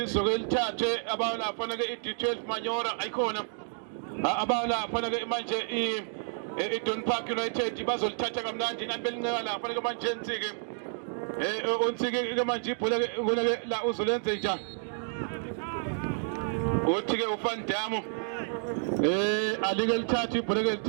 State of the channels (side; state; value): left; silent; digital silence